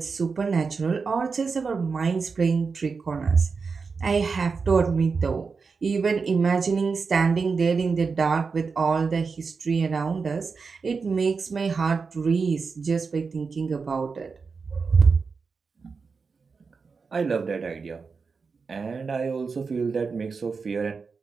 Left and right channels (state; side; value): quieter; left; 4.9 dB